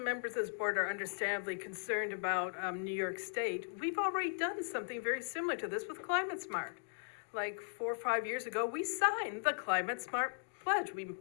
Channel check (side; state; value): right; silent; digital silence